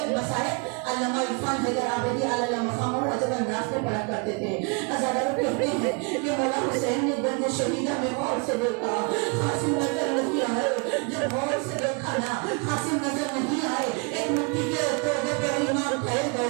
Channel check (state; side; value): quieter; left; 33.5 dB